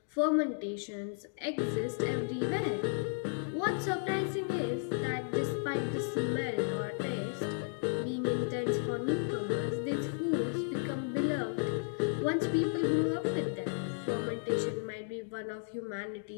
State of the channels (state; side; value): silent; right; digital silence